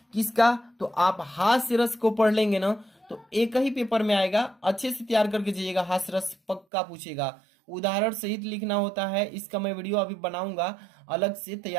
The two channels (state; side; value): drops out; left; at 6.7 s